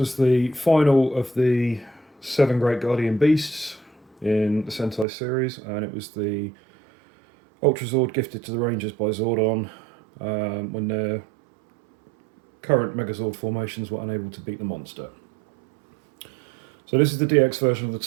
the final of the 7 Great Guardian Beasts in the Sentai series, and it was the Ultrazord gifted to the Rangers by Zordon when their current Megazord formations were unable to beat the monster. So this is the DX version of the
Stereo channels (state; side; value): drops out; left; at 5.1 s